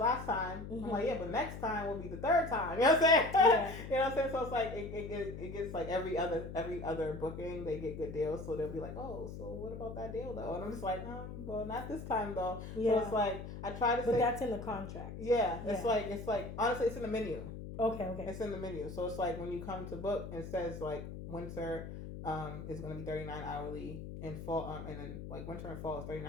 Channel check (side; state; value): left; noise; hum, 9 dB below the sound